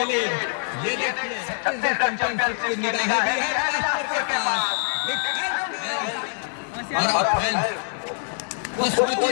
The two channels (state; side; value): silent; right; 62 dB below the other